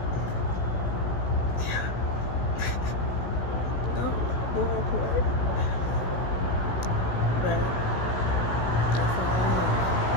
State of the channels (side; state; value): right; late; 16 ms